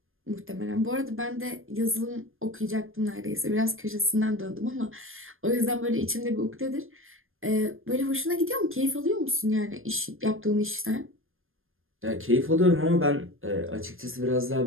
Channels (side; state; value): left; late; 0.60 ms